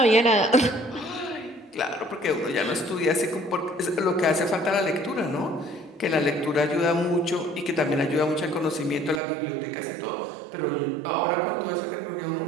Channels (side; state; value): left; drops out; at 9.2 s